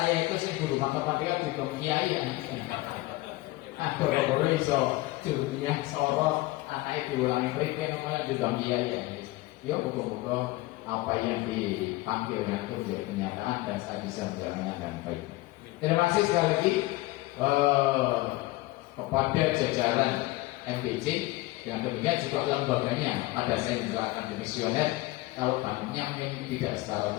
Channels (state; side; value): quieter; right; 19.4 dB